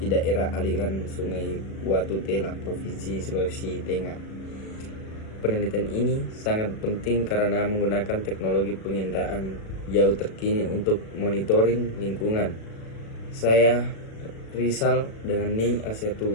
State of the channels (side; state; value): right; late; 37 ms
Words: daerah aliran Sungai Watu Tela, Provinsi Sulawesi Tengah. Penelitian ini sangat penting karena menggunakan teknologi penginderaan jauh terkini untuk monitoring lingkungan. Saya Rizal dengan NIM